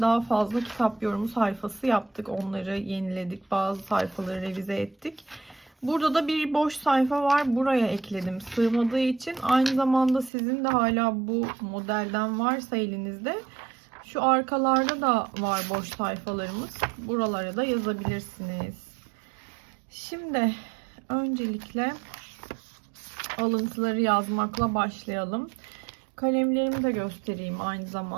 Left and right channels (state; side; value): drops out; left; at 10.3 s